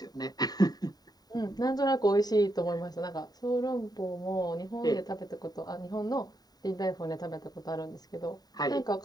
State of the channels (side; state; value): right; late; 0.19 ms